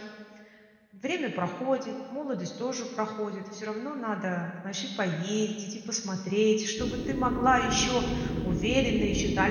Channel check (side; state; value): both; identical; correlation 1.00